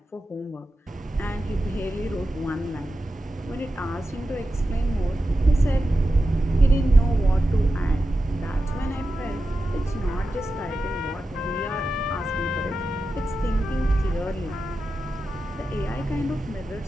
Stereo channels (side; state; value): both; normal; correlation 0.91